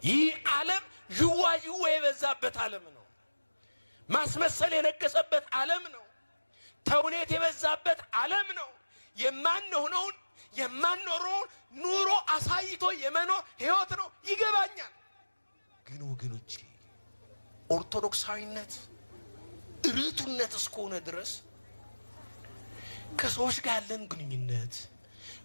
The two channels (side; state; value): both; inverted; correlation -1.00